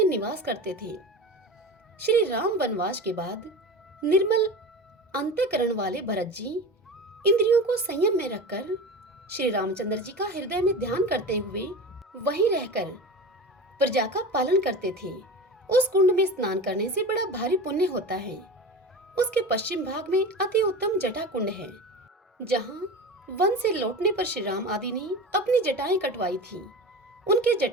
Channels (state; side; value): normal; both; correlation 0.30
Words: निवास करते थे। श्री राम वनवास के बाद निर्मल अंतःकरण वाले भरत जी इंद्रियों को संयम में रखकर श्री रामचंद्र जी का हृदय में ध्यान करते हुए वहीं रहकर प्रजा का पालन करते थे। उस कुंड में स्नान करने से बड़ा भारी पुण्य होता है। उसके पश्चिम भाग में अति उत्तम जटा कुंड है, जहाँ वन से लौटने पर श्री राम आदि ने अपनी जटाएं कटवाई थी। उनके